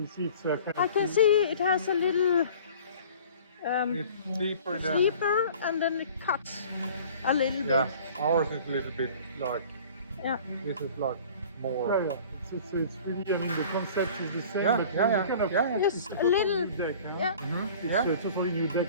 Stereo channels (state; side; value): inverted; both; correlation -0.46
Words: see it's kind I of can see it has a little It's deeper there. sleeper and then it cuts a little Yeah. bit. Ours is a little bit like, Yeah. this is like more. Yeah. It's really, I mean, the concept is the same, Yeah, but yeah, it's kind of, yeah. Just it's a totally little- new deck, huh? Yeah. Mm-hmm. It's Yeah. a totally new